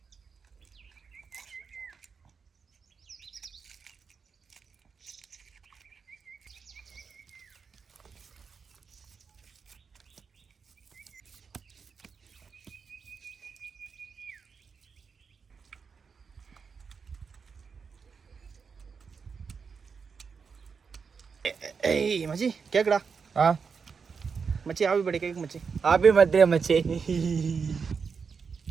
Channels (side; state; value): left; quieter; 5.7 dB